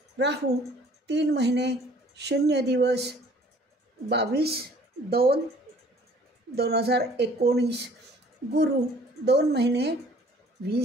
राहू 3 महिने 0 दिवस, 22/2/2019. गुरु 2 महिने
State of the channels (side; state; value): both; normal; correlation 0.55